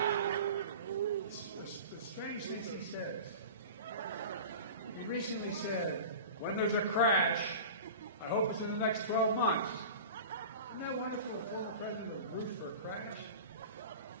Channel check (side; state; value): both; inverted; correlation -0.35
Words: The strange things he says. He recently said, when there's a crash, I hope it's in the next 12 months. Isn't that wonderful? President of Bruce for a crash?